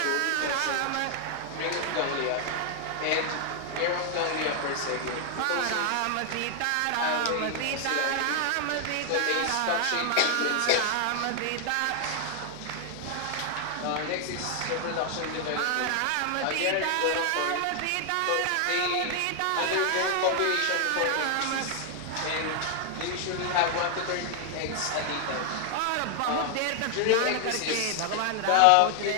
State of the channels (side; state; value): both; different; correlation 0.00